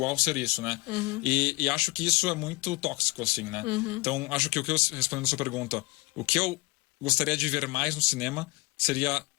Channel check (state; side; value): quieter; right; 25.0 dB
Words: ser isso, né? E acho que isso é muito tóxico, assim, né? Então, acho que respondendo a sua pergunta, o que eu gostaria de ver mais no cinema seria